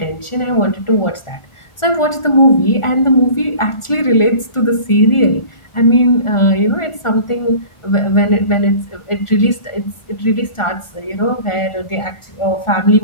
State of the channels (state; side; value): late; right; 1.4 ms